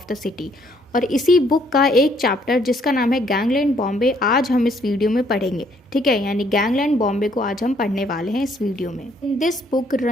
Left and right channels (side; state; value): both; normal; correlation 0.66